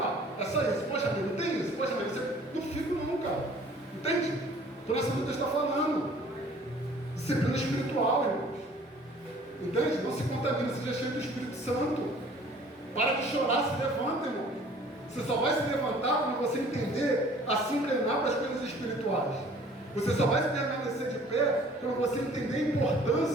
ó, é só isso, poxa, mãe, não tem isso, poxa, mãe, você não fica não, cara. Entende? Por essa luta está falando. Disciplina espiritual, irmãos. Entende? Não se contamina, seja cheio do Espírito Santo. Para de chorar, se levanta, irmão. Você só vai se levantar quando você entender a se inclinar para as coisas espirituais. Você só vai se permanecer de pé quando você entender a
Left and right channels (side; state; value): both; normal; correlation 0.52